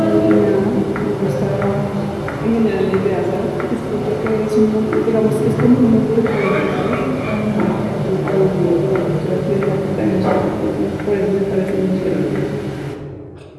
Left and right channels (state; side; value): identical; both; correlation 1.00